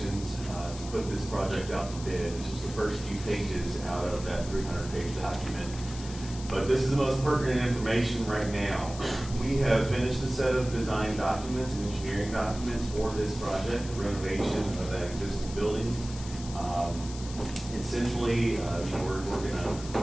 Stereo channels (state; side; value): noise; left; hiss, 14 dB below the sound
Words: to put this project out to bid. It's just the first few pages out of that 300-page document. But this is the most pertinent information right now. We have finished a set of design documents and engineering documents for this project, the renovation of that existing building. Essentially, we're gonna